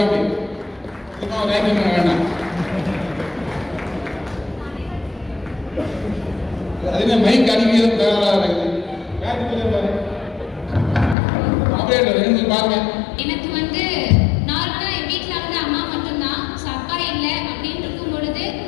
ரேங்கிங் பண்ண வேண்டாம். அதுவே மைக் அடிக்கிறது தயாராக இருக்குது. ஆபரேட்டர் ரெண்டு பாருங்க. எனக்கு வந்து நார்மலா என் வீட்டில் வந்து அம்மா மட்டும்தான், அப்பா இல்லை அப்படின்னு இருக்கும் பொழுது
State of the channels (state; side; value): drops out; right; at 11.2 s